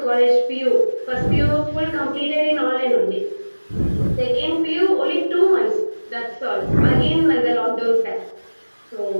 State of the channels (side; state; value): both; inverted; correlation -1.00